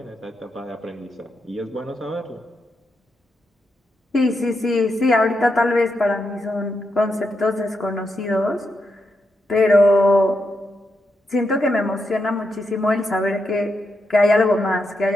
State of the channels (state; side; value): normal; both; correlation 0.84